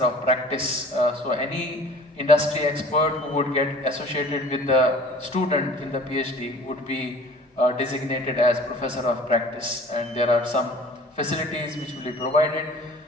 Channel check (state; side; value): normal; both; correlation 0.47